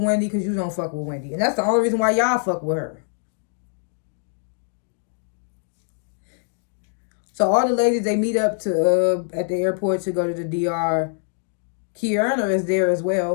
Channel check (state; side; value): silent; right; 63 dB below the other